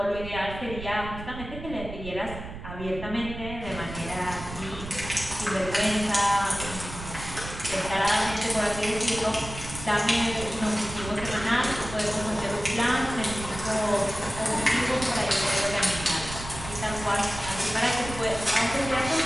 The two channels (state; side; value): noise; right; rumble, 10 dB below the sound